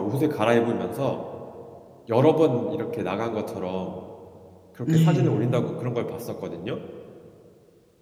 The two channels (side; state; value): both; identical; correlation 1.00